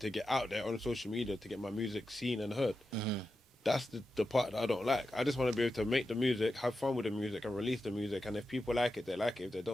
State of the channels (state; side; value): normal; both; correlation 0.90